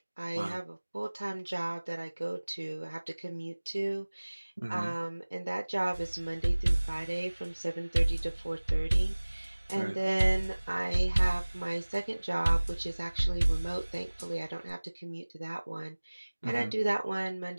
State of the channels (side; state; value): both; inverted; correlation -1.00